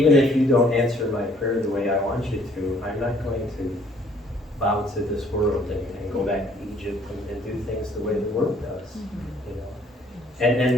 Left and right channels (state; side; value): normal; both; correlation 0.61